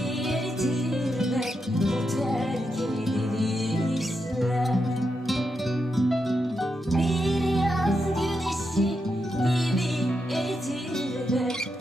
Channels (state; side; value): normal; both; correlation 0.85